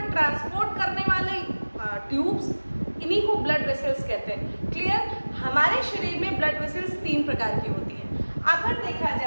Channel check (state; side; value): inverted; both; correlation -1.00